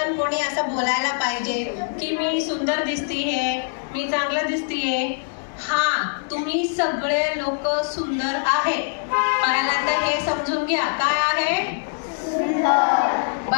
कोणी असं बोलायला पाहिजे की मी सुंदर दिसतीये, मी चांगलं दिसतीये। हाँ, तुम्ही सगळे लोक सुंदर आहे, पहिला तर हे समजून घ्या काय आहे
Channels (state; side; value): silent; right; digital silence